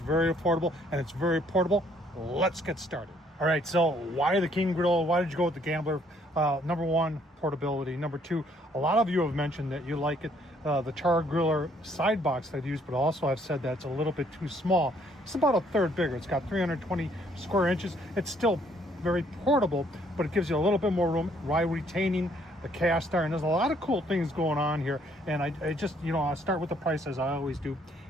affordable, and it's very portable. Let's get started. All right, so why the Kinggriller? Why did you go with the Gambler? Number one, portability. Number two, a lot of you have mentioned that you like it. The Chargriller side box that I use, but also I've said that it's a little bit too small. It's about a third bigger. It's got 320 square inches. It's still very portable, but it gives you a little bit more room while retaining the cast iron. There's a lot of cool things going on here, and I just, you know, I'll start with the price as I always do.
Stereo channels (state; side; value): normal; both; correlation 0.65